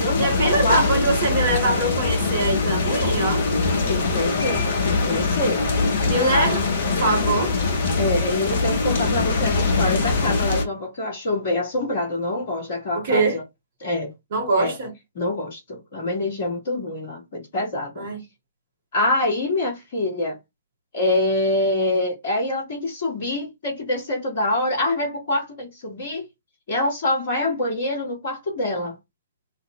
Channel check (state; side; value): inverted; both; correlation -0.56